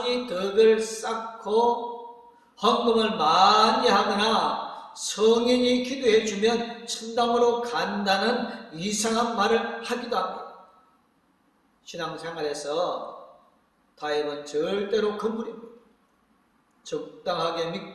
덕을 쌓고 헌금을 많이 하거나 성인이 기도해 주면 천당으로 간다는 이상한 말을 하기도 합니다. 신앙생활에서 타협은 절대로 금물입니다. 적당하게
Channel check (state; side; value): identical; both; correlation 1.00